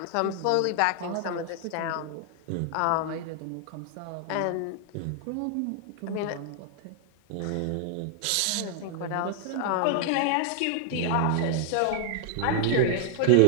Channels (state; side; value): different; both; correlation 0.00